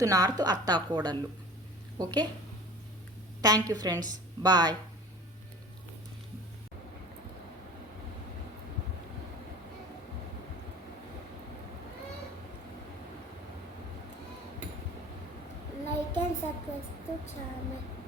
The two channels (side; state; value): both; normal; correlation 0.41